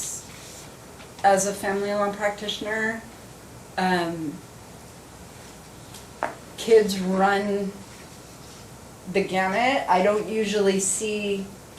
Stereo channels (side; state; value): both; identical; correlation 1.00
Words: as a family law practitioner, kids run the gamut. I don't usually see